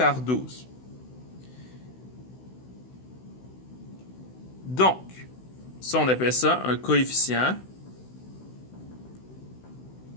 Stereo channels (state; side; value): late; right; 16 ms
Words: 12. Donc, ça, on appelle ça un coefficient